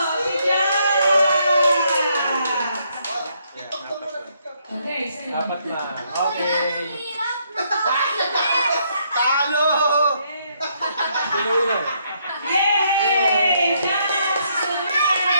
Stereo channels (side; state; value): both; inverted; correlation -0.72